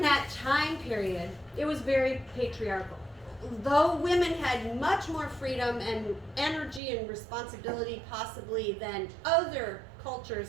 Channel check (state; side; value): drops out; left; at 6.8 s